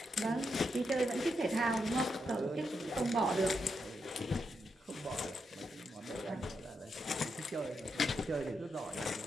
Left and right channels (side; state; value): both; normal; correlation 0.83